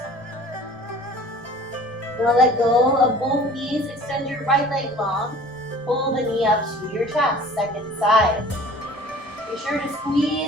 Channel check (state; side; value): normal; both; correlation 0.47